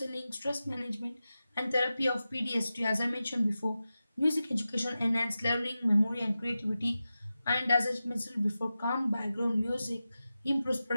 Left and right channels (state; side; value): inverted; both; correlation -0.93